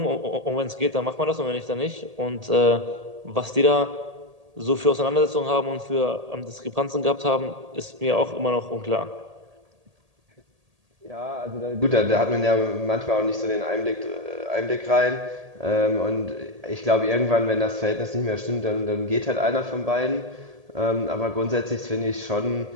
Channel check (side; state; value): left; late; 1.8 ms